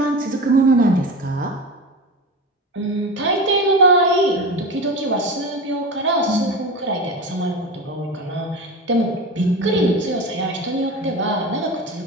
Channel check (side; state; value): both; normal; correlation 0.26